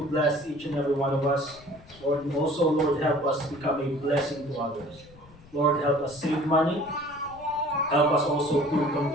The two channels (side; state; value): left; noise; rumble, 23 dB below the sound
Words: bless each and every one of us. Lord, and also, Lord, help us become a blessing to others. Lord, help us save money. Help us also to